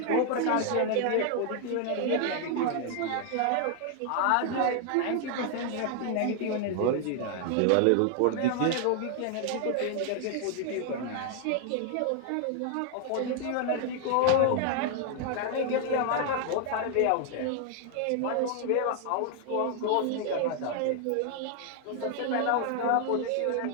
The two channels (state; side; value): different; both; correlation 0.00